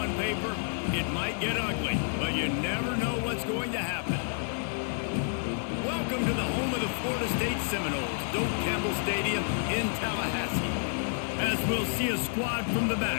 paper, it might get ugly, but you never know what's going to happen. Welcome to the home of the Florida State Seminoles, Doak Campbell Stadium in Tallahassee. As we'll see a squad from the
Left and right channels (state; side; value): silent; right; digital silence